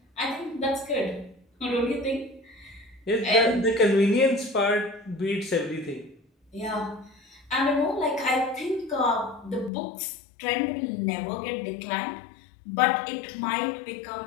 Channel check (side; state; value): right; drops out; at 9.7 s